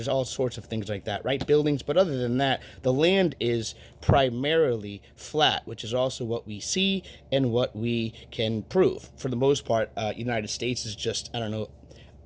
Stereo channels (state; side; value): identical; both; correlation 1.00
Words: all sorts of things like that, right? Buildings. But other than that, the land is primarily flat, which is also what we see and what we can prove. For the most part, United States is just, I don't know,